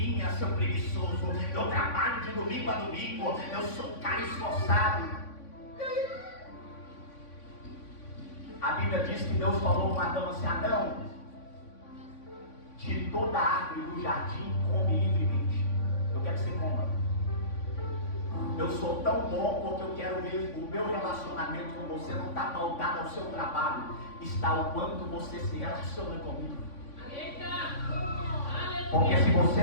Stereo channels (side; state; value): right; late; 3.5 ms